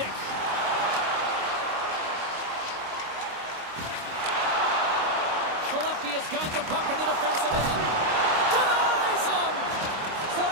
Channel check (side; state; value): left; late; 26 ms